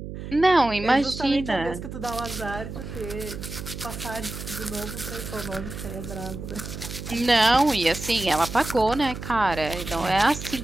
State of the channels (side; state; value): right; noise; hum, 9 dB below the sound